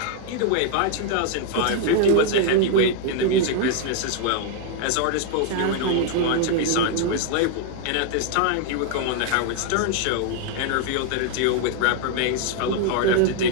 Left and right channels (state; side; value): different; both; correlation 0.00